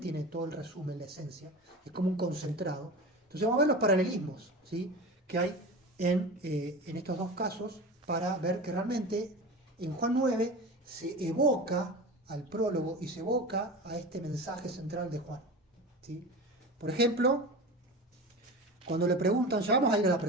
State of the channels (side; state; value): both; normal; correlation 0.30